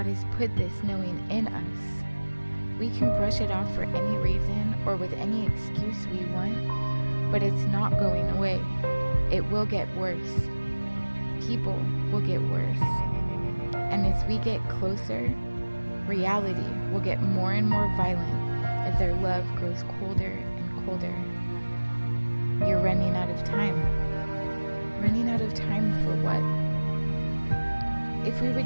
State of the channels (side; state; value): both; inverted; correlation -1.00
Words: has put this knowing in us. We can brush it off for any reason or with any excuse we want, but it's not going away. It will get worse. People will get worse. And as we get closer, reality will get more and more violent as their love grows colder and colder. You're running out of time. Running out of time for what? If we